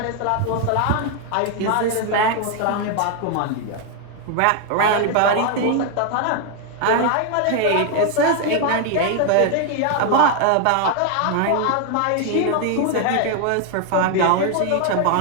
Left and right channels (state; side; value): different; both; correlation 0.01